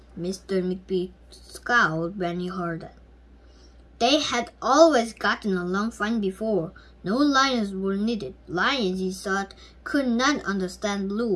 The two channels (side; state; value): both; identical; correlation 1.00